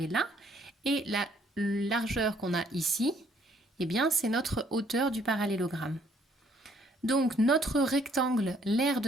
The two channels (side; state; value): both; normal; correlation 0.65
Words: là. Et la largeur qu'on a ici, eh bien, c'est notre hauteur du parallélogramme. Donc notre rectangle, l'aire